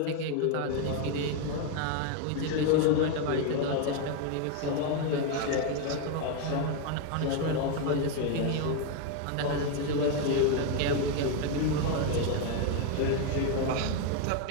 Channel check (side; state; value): both; different; correlation 0.01